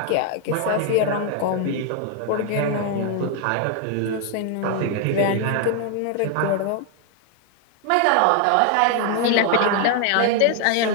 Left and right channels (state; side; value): different; both; correlation 0.00